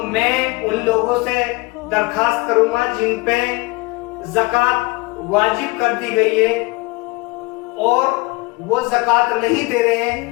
میں ان لوگوں سے درخواست کروں گا جن پہ زکات واجب کر دی گئی ہے اور وہ زکات نہیں دے رہے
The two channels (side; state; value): right; quieter; 24.7 dB